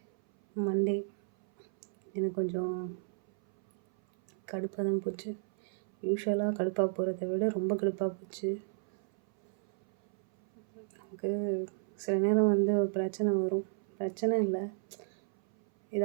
மண்டே எனக்கு கொஞ்சம் கடுப்பாக தான் போச்சு. யூஷுவலாக கடுப்பாக போகிறத விட ரொம்ப கடுப்பாக போச்சு. நமக்கு சில நேரம் ஒரு பிரச்சனை வரும். பிரச்சனை இல்லை,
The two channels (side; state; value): left; silent; 56 dB below the other